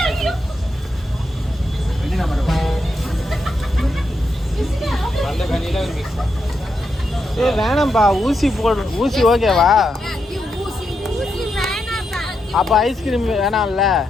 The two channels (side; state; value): both; normal; correlation 0.83